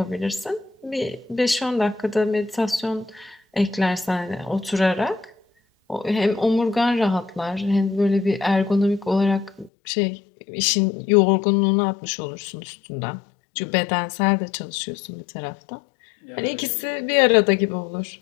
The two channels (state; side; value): drops out; right; at 9.7 s